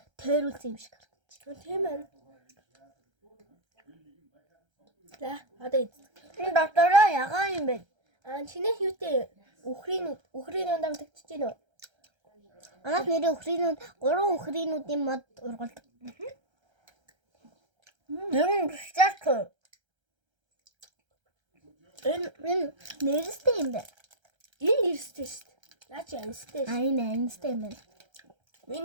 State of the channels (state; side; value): late; left; 1.3 ms